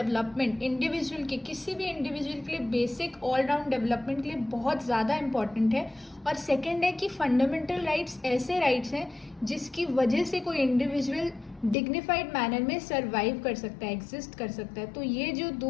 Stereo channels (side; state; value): right; drops out; at 11.8 s